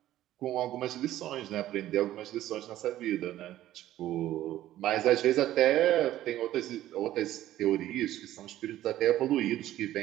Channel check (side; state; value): left; quieter; 13.7 dB